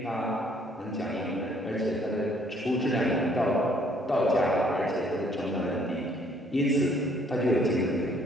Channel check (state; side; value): normal; both; correlation 0.63